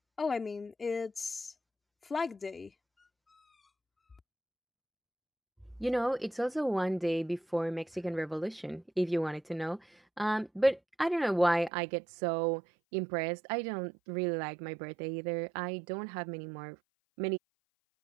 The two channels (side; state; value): left; drops out; at 11.7 s